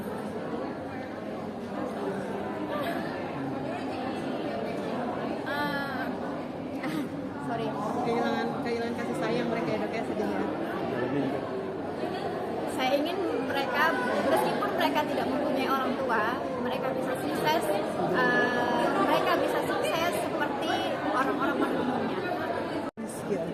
sorry. Kehilangan kasih sayang mereka ya, Dok ya, sedih ya. Saya ingin mereka, meskipun mereka tidak mempunyai orang tua, mereka bisa sukses. Mereka bisa sukses seperti orang-orang pada umumnya.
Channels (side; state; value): both; identical; correlation 1.00